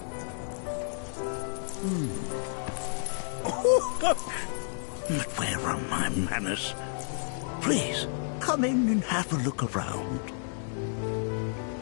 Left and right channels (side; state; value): right; silent; digital silence